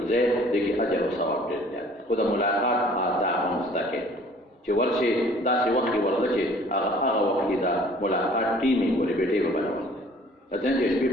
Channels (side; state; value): both; normal; correlation 0.53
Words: ځای دی کې اجر او ثواب ډېر زیات. خو د ملاقات آداب هم زده کړئ چې ورشي داسې وخت کې ورځه چې هغه وخت کې دا ملاقات ټیم یې ولې بیټې به برابر دی. ځان چې شپې